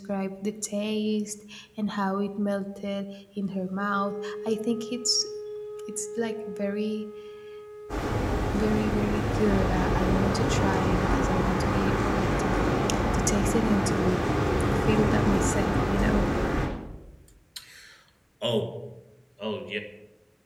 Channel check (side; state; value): both; identical; correlation 1.00